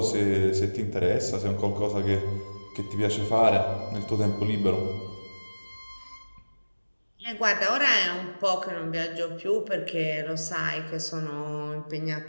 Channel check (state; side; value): inverted; both; correlation -1.00